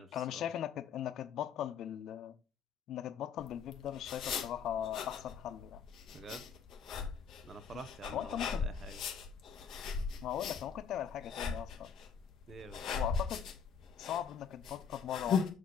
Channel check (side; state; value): right; quieter; 7.1 dB